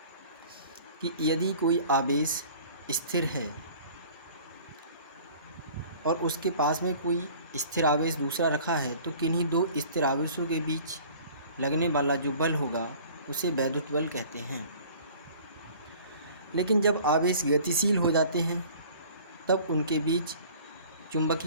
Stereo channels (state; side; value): inverted; both; correlation -0.48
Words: कि यदि कोई आवेश स्थिर है और उसके पास में कोई स्थिर आवेश दूसरा रखा है, तो किन्हीं दो स्थिर आवेशों के बीच लगने वाला जो बल होगा उसे वैद्युत बल कहते हैं। लेकिन जब आवेश गतिशील हो जाते हैं तब उनके बीच